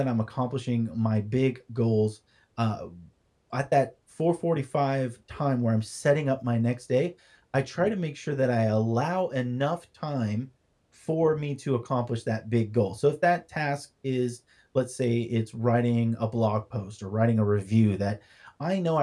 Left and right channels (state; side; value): identical; both; correlation 1.00